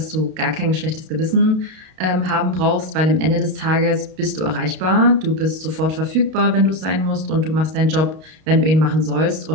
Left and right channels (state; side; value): late; left; 32 ms